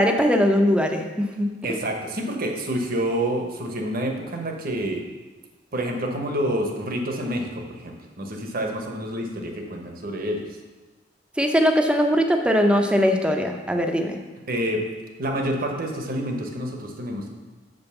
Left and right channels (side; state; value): both; normal; correlation 0.66